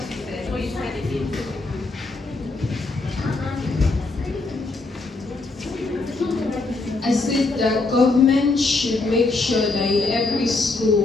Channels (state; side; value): quieter; right; 3.5 dB